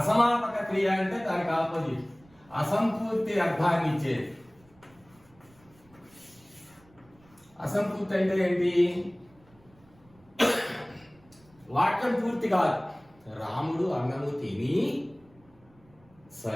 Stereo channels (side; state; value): right; noise; rumble, 29 dB below the sound